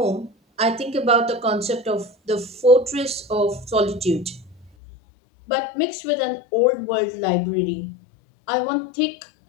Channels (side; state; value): right; drops out; at 4.7 s